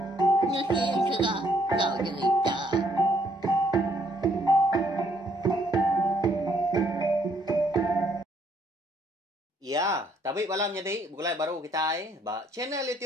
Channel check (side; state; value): both; normal; correlation 0.67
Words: Nusi serah kau cerita. Ya, tapi malam jadi mulai baru kita ba channel